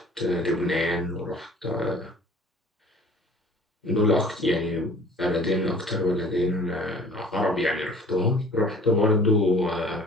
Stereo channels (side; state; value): both; normal; correlation 0.49